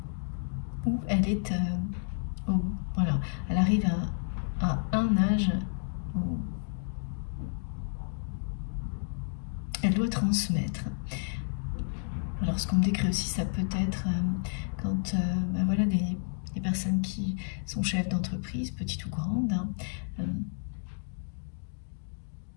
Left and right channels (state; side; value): silent; right; digital silence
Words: Où elle est, voilà, elle arrive à un âge où elle doit transmettre. Alors ce qu'on me décrit aussi, ça peut être quand voilà, des personnes qui sont chefs d'entreprise, petites ou grandes,